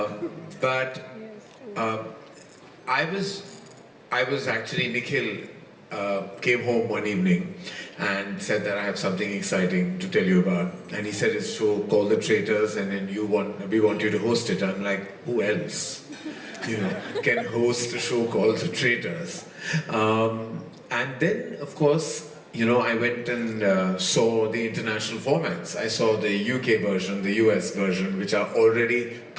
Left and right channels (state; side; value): identical; both; correlation 1.00